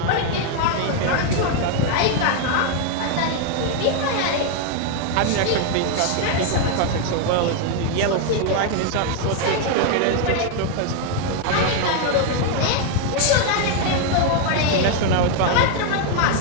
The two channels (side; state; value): both; different; correlation 0.01